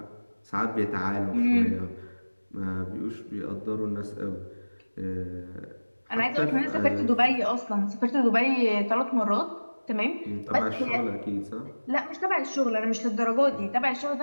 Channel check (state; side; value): inverted; both; correlation -1.00